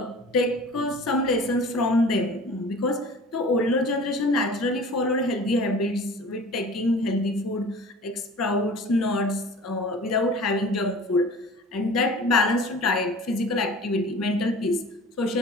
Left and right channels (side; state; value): both; normal; correlation 0.42